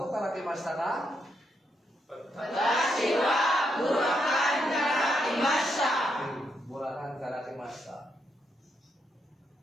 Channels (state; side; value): normal; both; correlation 0.79